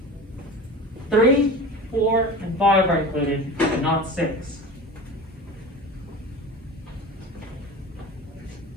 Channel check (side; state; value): both; normal; correlation 0.33